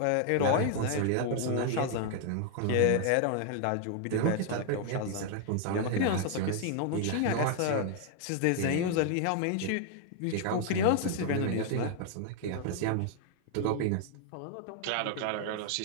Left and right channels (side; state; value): both; different; correlation 0.00